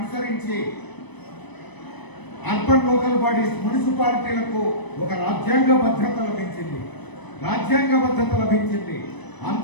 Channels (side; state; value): right; late; 1.0 ms